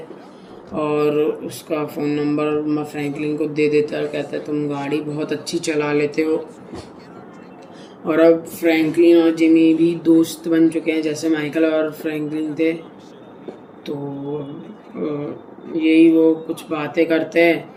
और उसका फ़ोन नंबर मैं फ्रैंकलिन को दे देता है। कहता है तुम गाड़ी बहुत अच्छी चला लेते हो। और अब फ्रैंकलिन और जिमी भी दोस्त बन चुके हैं, जैसे माइकल और फ्रैंकलिन थे। तो यही वो कुछ बातें करते हैं,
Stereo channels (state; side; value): identical; both; correlation 1.00